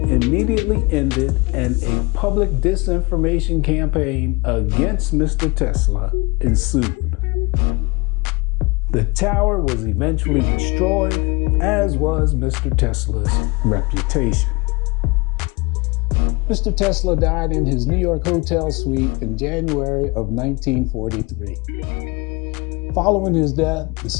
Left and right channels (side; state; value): right; quieter; 25.9 dB